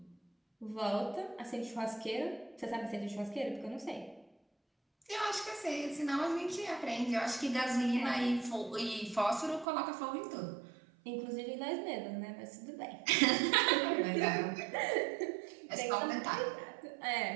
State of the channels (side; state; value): left; drops out; at 9.7 s